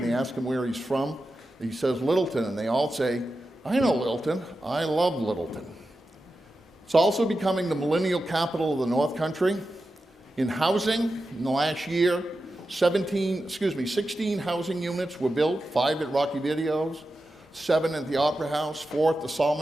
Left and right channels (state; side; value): normal; both; correlation 0.91